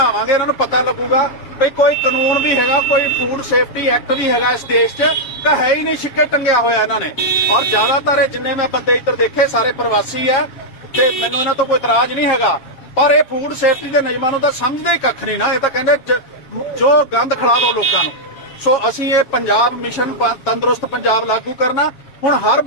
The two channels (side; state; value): right; late; 7.5 ms